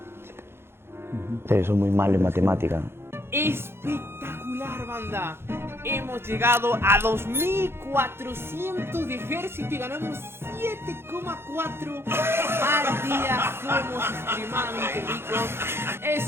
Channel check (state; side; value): late; left; 0.12 ms